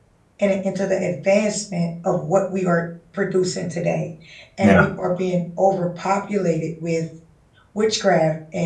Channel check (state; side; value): identical; both; correlation 1.00